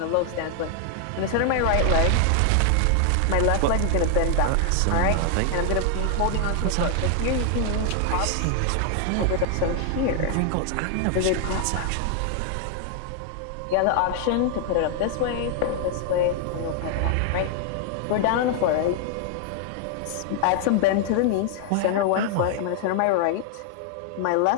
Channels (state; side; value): different; both; correlation 0.00